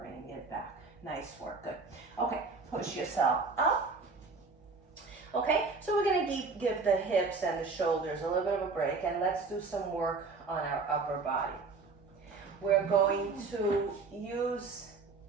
it back. Nice work, good. Okay, push yourself up. Okay, so we're going to give the hips and the shoulders a little bit of a break, and let's do some work on our upper body. We're going to use,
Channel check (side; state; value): left; quieter; 4.3 dB